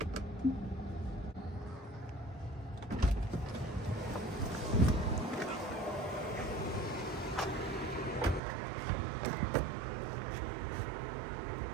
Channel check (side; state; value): left; drops out; at 8.4 s